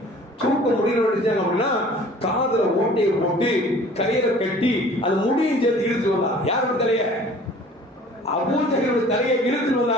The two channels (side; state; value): both; normal; correlation 0.49